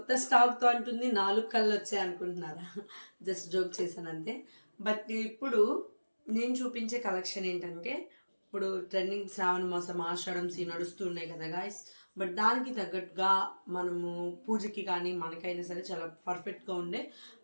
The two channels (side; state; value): both; inverted; correlation -1.00